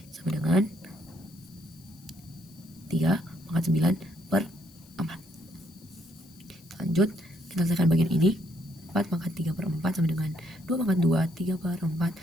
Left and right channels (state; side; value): noise; left; hiss, 25 dB below the sound